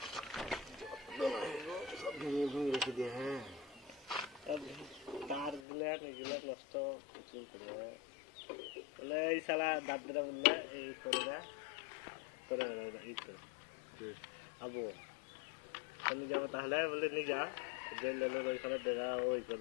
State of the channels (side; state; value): right; drops out; at 5.6 s